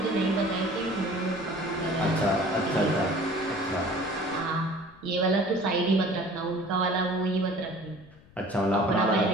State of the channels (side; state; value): left; noise; rumble, 25 dB below the sound